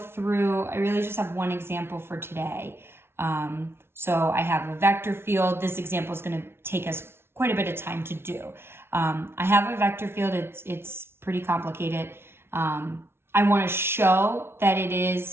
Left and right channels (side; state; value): left; late; 0.12 ms